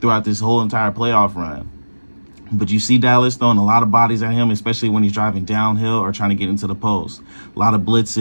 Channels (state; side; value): inverted; both; correlation -1.00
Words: throughout this whole entire playoff run. But you see Dallas throwing a lot of bodies at him, especially when he's driving downhill or trying to get into the post. A lot of